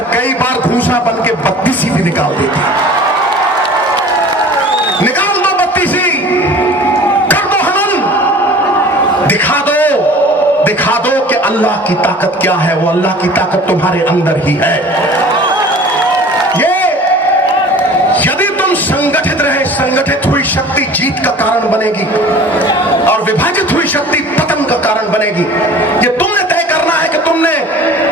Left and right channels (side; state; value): both; normal; correlation 0.44